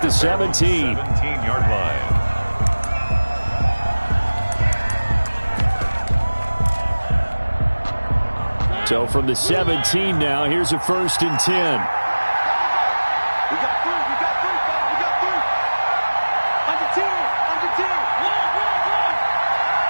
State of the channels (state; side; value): inverted; both; correlation -1.00